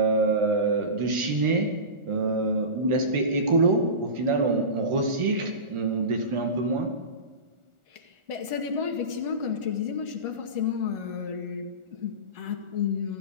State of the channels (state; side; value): late; left; 1.4 ms